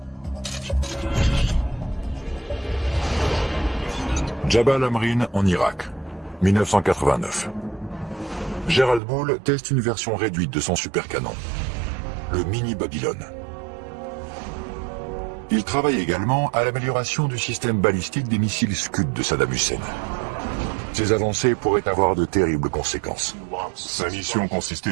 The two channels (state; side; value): drops out; left; at 9.0 s